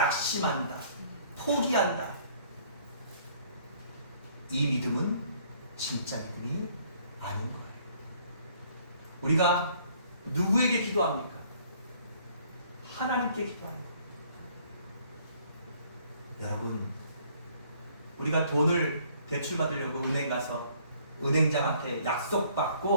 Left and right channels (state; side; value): inverted; both; correlation -0.60